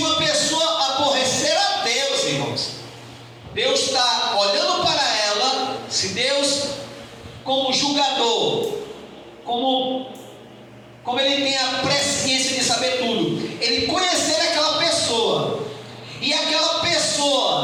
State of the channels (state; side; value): identical; both; correlation 1.00